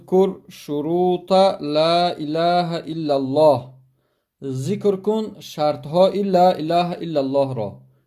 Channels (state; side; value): identical; both; correlation 1.00